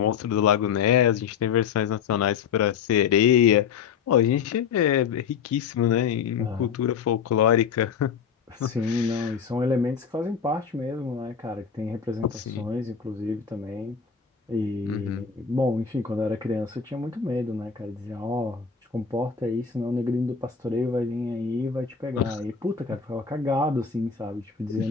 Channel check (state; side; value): quieter; right; 6.6 dB